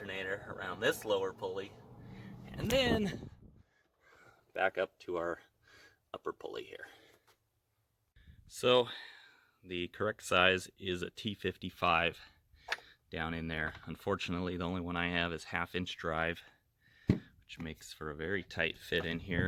this lower pulley, and then back up to our upper pulley here. So the correct size is a T55 down in there. Unfortunately, the only one I have is 1/2 inch drive, which makes for a very tight fit in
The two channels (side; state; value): both; identical; correlation 1.00